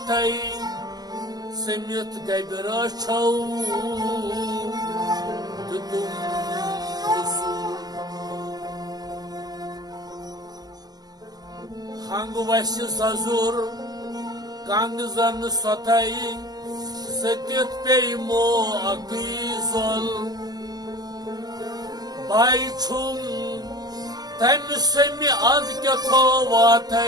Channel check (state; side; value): late; left; 0.19 ms